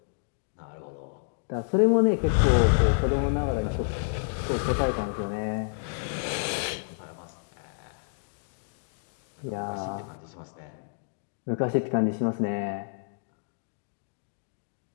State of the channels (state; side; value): silent; right; digital silence